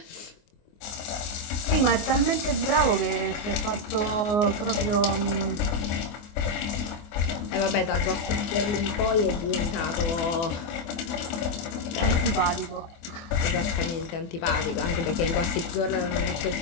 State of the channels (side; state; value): right; late; 24 ms